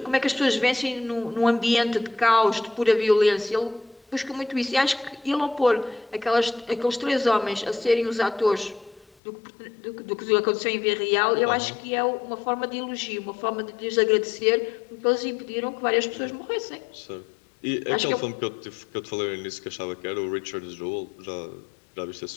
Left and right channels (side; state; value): right; drops out; at 9.1 s